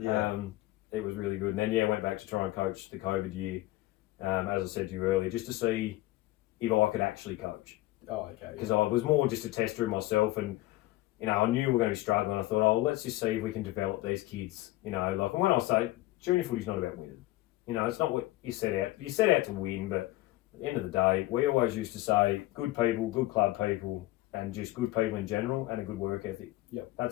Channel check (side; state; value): right; quieter; 17.9 dB